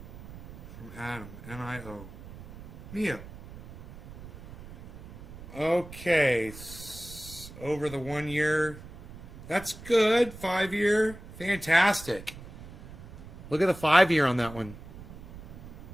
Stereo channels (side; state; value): right; noise; rumble, 15 dB below the sound